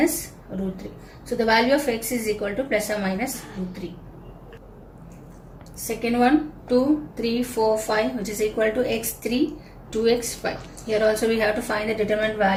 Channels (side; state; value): both; identical; correlation 1.00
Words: root 3. So the value of x is equal to plus or minus root 3. Second one, 2, 3, 4, 5 which is equal to x3, 2x, 5. Here also we have to find the determinant